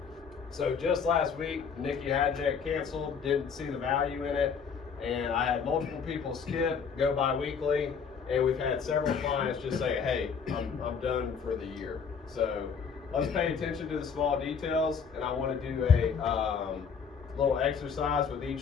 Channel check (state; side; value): quieter; right; 6.3 dB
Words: So just last week, Nikki Hajek canceled, didn't see the value in it, and I had multiple people skip, go bi-weekly, and we've had several clients just say, hey, I'm done for the year. So let's pay attention to the small details, and I want to do a little exercise with